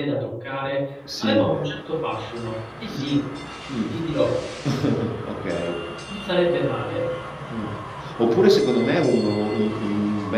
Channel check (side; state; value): both; identical; correlation 1.00